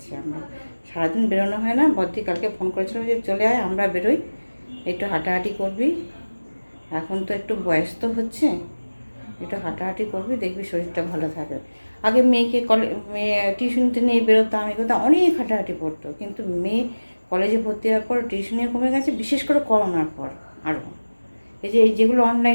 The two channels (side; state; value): both; inverted; correlation -1.00